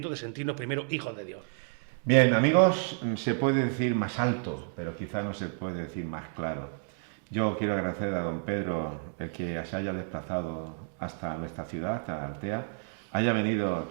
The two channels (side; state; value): left; silent; 58 dB below the other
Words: de sentirnos primero hijos de Dios. Bien, amigos, se puede decir más alto, pero quizá no se puede decir más claro. Yo quiero agradecer a don Pedro el que se haya desplazado hasta nuestra ciudad, hasta Altea, haya venido